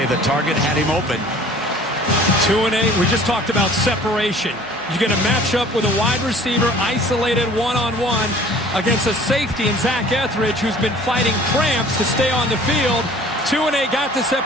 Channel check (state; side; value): noise; right; hum, 30 dB below the sound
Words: the target had him open. 2-A, we just talked about separation. You're going to match up with a wide receiver isolated one-on-one against a safety in Zach Etheridge, who's been fighting cramps to stay on the field. 2-A got the